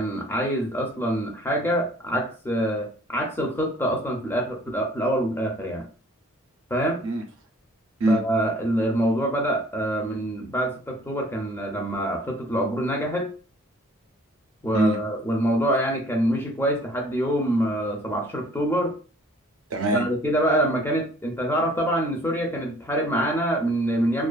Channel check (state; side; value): normal; both; correlation 0.55